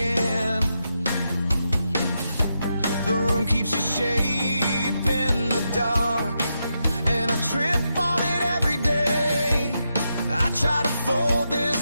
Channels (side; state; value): both; inverted; correlation -0.85